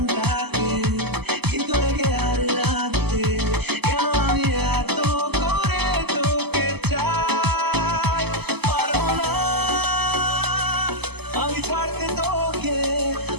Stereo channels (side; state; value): left; late; 0.98 ms